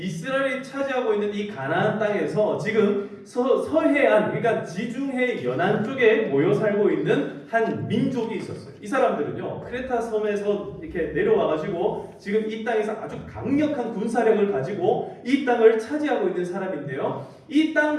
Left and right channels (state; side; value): identical; both; correlation 1.00